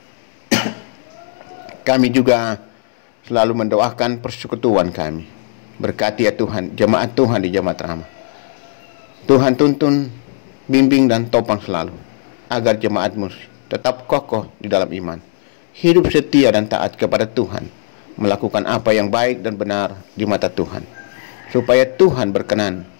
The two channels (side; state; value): right; silent; 68 dB below the other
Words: kami juga selalu mendoakan persekutuan kami. Berkati ya Tuhan, jemaat Tuhan di Jemaat Rama. Tuhan tuntun, bimbing dan topang selalu, agar jemaat-Mu tetap kokoh di dalam iman, hidup setia dan taat kepada Tuhan, melakukan apa yang baik dan benar di mata Tuhan, supaya Tuhan berkenan